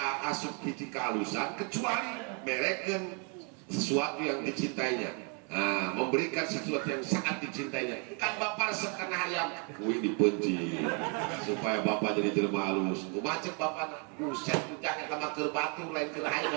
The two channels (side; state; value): left; quieter; 36.8 dB